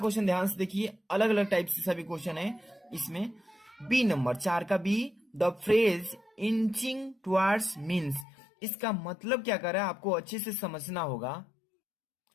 ध्यान से देखिए, अलग अलग टाइप से सभी क्वेश्चन है इसमें। बी नंबर, 4 का B, the phrase inching towards means. इसका मतलब क्या कर रहा है आपको अच्छे से समझना होगा।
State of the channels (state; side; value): drops out; right; at 8.2 s